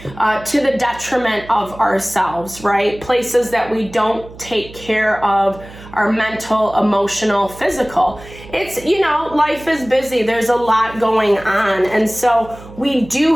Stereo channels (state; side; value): noise; right; hum, 18 dB below the sound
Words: the detriment of ourselves, right? Places that we don't take care of our mental, emotional, physical. It's, life is busy. There's a lot going on. And so we do